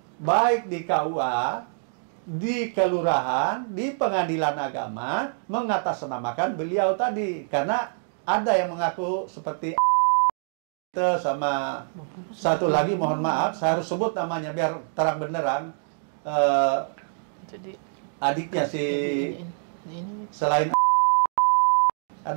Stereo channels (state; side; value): silent; left; digital silence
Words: baik di KUA, di kelurahan, di pengadilan agama, mengatasnamakan beliau tadi. Karena ada yang mengaku seperti sama satu lagi, mohon maaf, saya harus sebut namanya biar terang benderang. Adiknya si selain